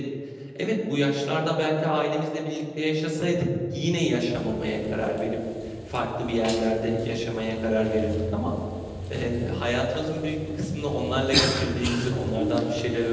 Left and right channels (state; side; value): identical; both; correlation 1.00